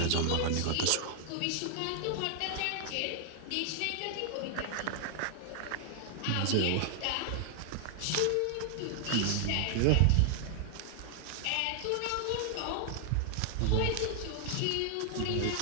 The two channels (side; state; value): both; different; correlation 0.00